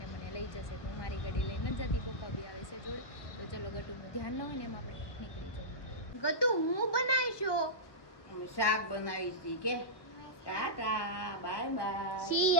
મને લઈ જશે. તો હું મારી ગાડી લઈને જ જતી, પપ્પા બી આવે છે જોડે. તો ચલો ગટુનું ધ્યાન ન હોય ને એમ આપણે નીકળી જઈએ. ગટુ હું બનાવીશો અમે શાક બનાવી છે કે ટાટા બાય બાય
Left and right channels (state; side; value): late; right; 1.1 ms